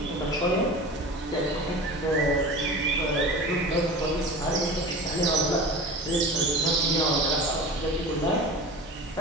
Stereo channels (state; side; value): normal; both; correlation 0.35